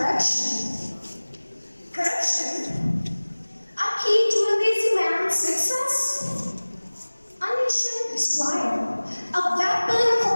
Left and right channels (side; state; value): both; inverted; correlation -1.00